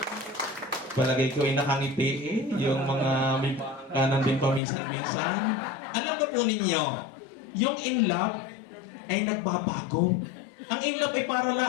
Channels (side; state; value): right; drops out; at 4.6 s